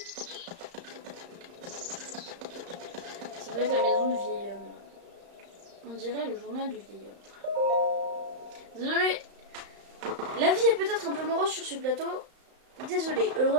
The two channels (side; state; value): left; late; 35 ms